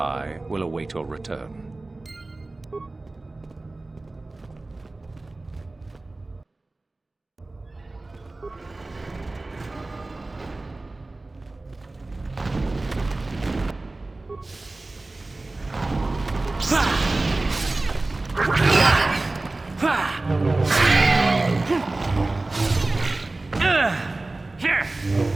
will await your return.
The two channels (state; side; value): quieter; left; 3.0 dB